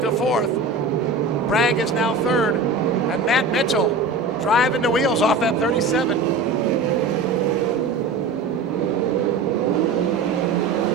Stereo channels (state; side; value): quieter; left; 3.9 dB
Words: fourth. Bragg is now third. And Matt Mitchell driving the wheels off that 37.